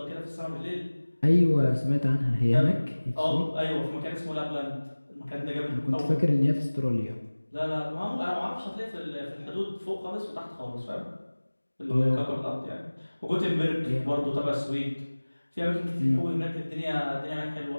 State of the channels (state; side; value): inverted; both; correlation -1.00